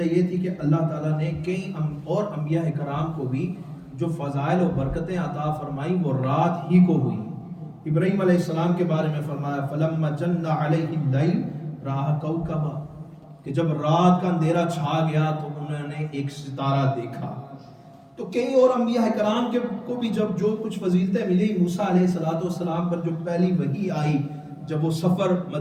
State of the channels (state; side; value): identical; both; correlation 1.00